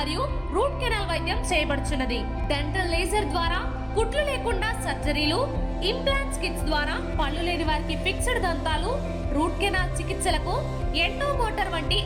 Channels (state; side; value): identical; both; correlation 1.00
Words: రూట్ కెనాల్ వైద్యం చేయబడుచున్నది. డెంటల్ లేజర్ ద్వారా కుట్లు లేకుండా సర్జరీలు, ఇంప్లాంట్స్ కిట్స్ ద్వారా పళ్ళు లేని వారికి ఫిక్స్డ్ దంతాలు, రూట్ కెనాల్ చికిత్సలకు ఎండో మోటార్ వంటి